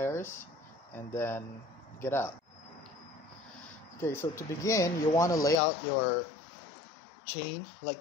and then get out. Okay, so to begin, you want to lay out your chain like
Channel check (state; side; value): drops out; right; at 5.6 s